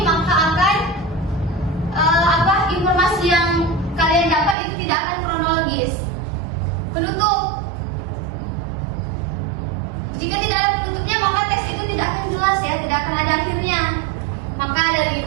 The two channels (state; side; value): drops out; left; at 4.5 s